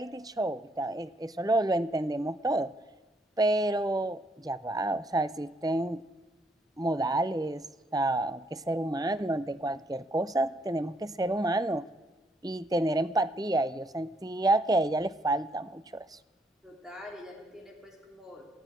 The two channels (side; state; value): both; normal; correlation 0.71